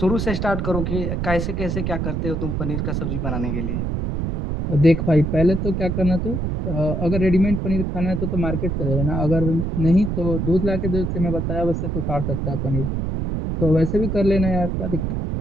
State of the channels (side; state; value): right; noise; rumble, 1 dB below the sound